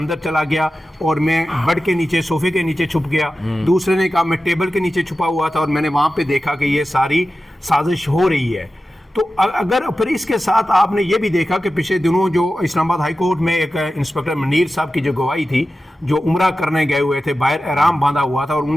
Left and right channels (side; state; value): both; normal; correlation 0.94